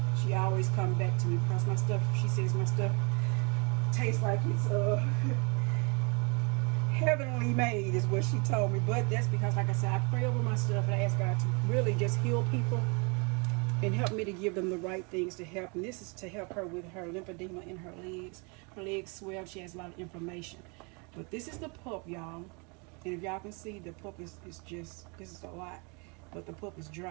stuff tastes like it's heavenly made, is what she told me. But that's because, like I said, I pray over my stuff and I ask God to really just heal people and help me to give them the right things to help. And this is to help her with her lymphedema in her legs. Her legs swell. She has a lot of inflammation. But this is the pulp, y'all. And if y'all can see, the pulp is just, this is a lot. But the pulp is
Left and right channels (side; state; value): left; quieter; 32.3 dB